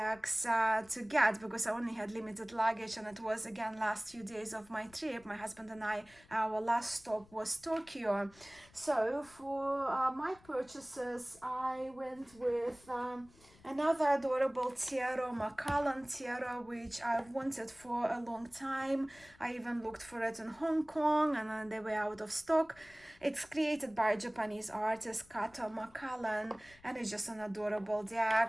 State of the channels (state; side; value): noise; left; rumble, 26 dB below the sound